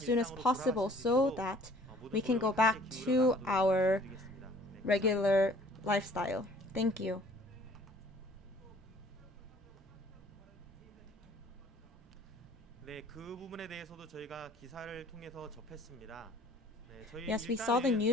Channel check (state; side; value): normal; both; correlation 0.53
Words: as possible so that we can go back to our regular lifestyle. Thank you. Yes, we saw the